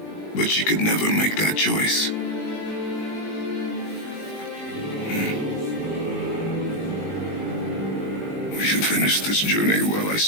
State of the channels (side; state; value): right; late; 20 ms